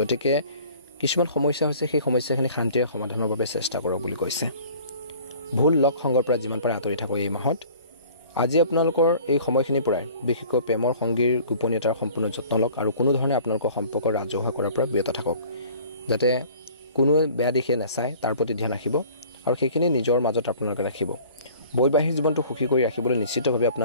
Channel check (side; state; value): both; inverted; correlation -0.49